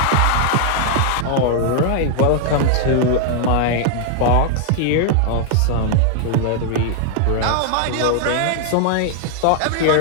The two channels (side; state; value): both; different; correlation 0.00